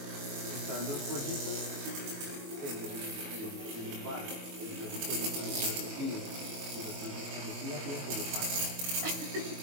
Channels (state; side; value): late; left; 22 ms